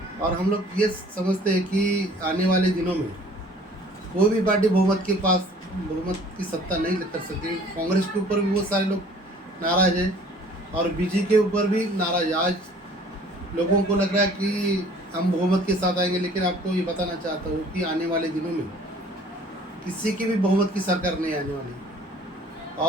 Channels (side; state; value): both; normal; correlation 0.52